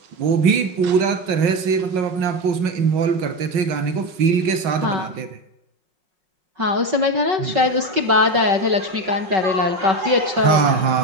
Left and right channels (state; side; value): late; left; 5.5 ms